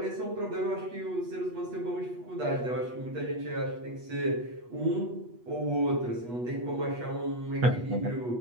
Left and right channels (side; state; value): left; late; 8.3 ms